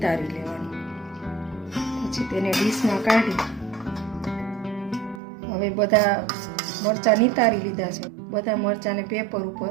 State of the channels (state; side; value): drops out; left; at 5.2 s